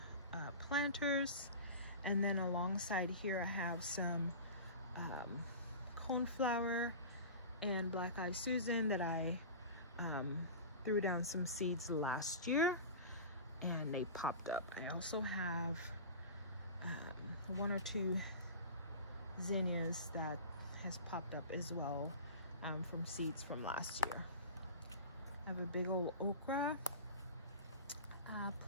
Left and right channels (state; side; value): inverted; both; correlation -0.33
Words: planters, and then alongside here I have some coneflower and black-eyed Susan that I threw down some seeds last year and they popped up. I also have one or two zinnias that has popped up as well from seeds from last year. I have a big old okra